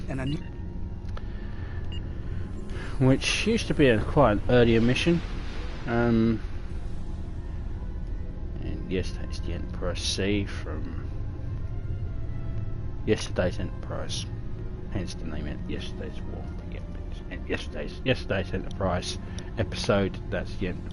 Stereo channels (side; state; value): both; identical; correlation 1.00